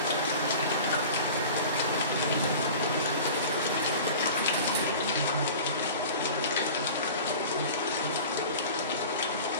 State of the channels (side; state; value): both; inverted; correlation -0.38